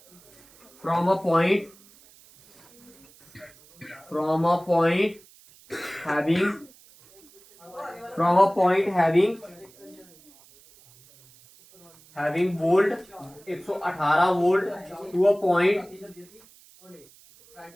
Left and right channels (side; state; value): right; noise; hiss, 26 dB below the sound